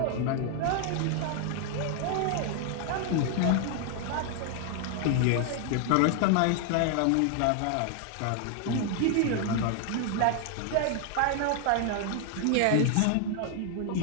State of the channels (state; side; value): different; both; correlation 0.00